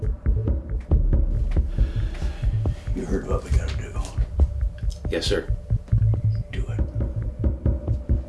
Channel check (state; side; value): identical; both; correlation 1.00